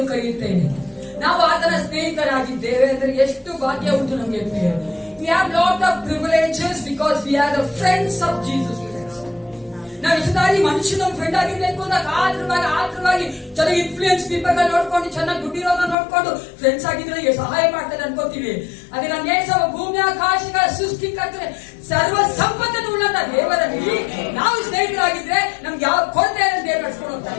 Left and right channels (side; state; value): right; drops out; at 16.0 s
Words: ಕರೆಯುತ್ತೇನೆ. ನಾವು ಆತನ ಸ್ನೇಹಿತರಾಗಿದ್ದೇವೆ ಅಂದ್ರೆ ಎಷ್ಟು ಭಾಗ್ಯ ಉಂಟು ನಮಗೆ. We have lot of privileges because we are the friends of Jesus Christ. ನಾವು ಇಷ್ಟದಾಗಿ ಮನುಷ್ಯನ ಫ್ರೆಂಡ್ ಆಗಿರ್ಬೇಕು ಅಂತ ಆತರವಾಗಿ ಚೆನ್ನಾಗಿ ಇನ್ಫ್ಲೂಯೆನ್ಸ್ ಪೀಪಲ್ ನೋಡ್ಕೊಂಡು ಚೆನ್ನಾಗಿ ದುಡ್ಡಿರೋದ ನೋಡ್ಕೊಂಡು ಫ್ರೆಂಡ್ಸ್ ಆಗಿದ್ರೆ ಸಹಾಯ ಮಾಡ್ತಾರೆ ಅನ್ಕೋತೀವಿ. ಅದೇ ನಮ್ಮ ಏಸವ ಭೂಮಿ ಆಕಾಶಗಳ ಸೃಷ್ಟಿಕರ್ತರೆ ಸರ್ವ ಸಂಪತ್ತನ್ನು ಉಳ್ಳಂತ ದೇವರಲ್ಲಿ ನಾವು ಸ್ನೇಹಿತರಾಗಿದ್ರೆ ನಮ್ಗೆ ಯಾವ ಕೊರತೆ ದೇವರು ನಡ್ಸ್ಕೊಂಡು ಹೋಗ್ತಾ